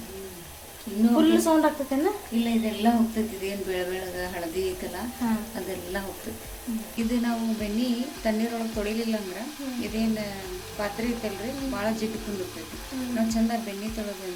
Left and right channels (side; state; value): both; identical; correlation 1.00